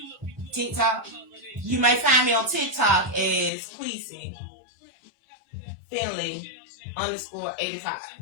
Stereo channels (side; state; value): right; drops out; at 3.5 s